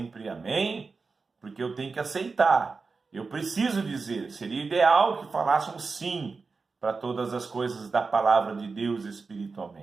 amém, porque eu tenho que aceitar. Eu preciso dizer, seria ideal que falássemos sim para todas as coisas da palavra de Deus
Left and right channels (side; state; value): left; quieter; 4.4 dB